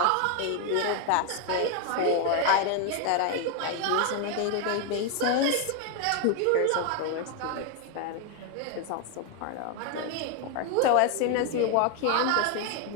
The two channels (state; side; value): different; both; correlation 0.01